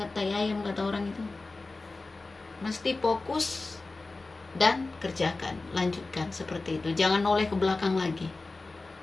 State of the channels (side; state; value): right; quieter; 3.5 dB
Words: tai ayam kata orang itu. Mesti fokus dan kerjakan, lanjutkan seperti itu. Jangan noleh ke belakang lagi.